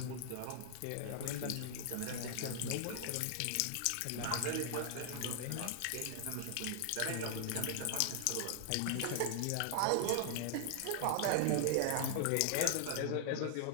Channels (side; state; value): both; different; correlation 0.00